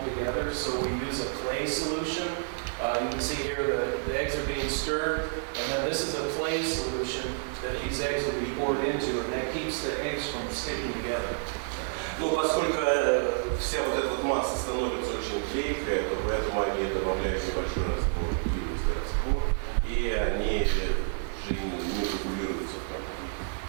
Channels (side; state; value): left; silent; digital silence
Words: together. So we use a clay solution. You can see here the eggs are being stirred, and then this is a clay solution that these eggs will be poured into, and that keeps the eggs from sticking together. Но поскольку вся вот эта вот масса становится очень клейкая, то поэтому они добавляют небольшой раствор, глинистый раствор, и они же не регулируются.